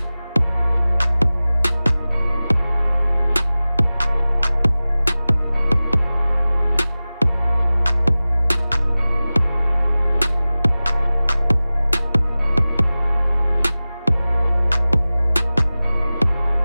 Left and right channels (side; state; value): both; inverted; correlation -0.97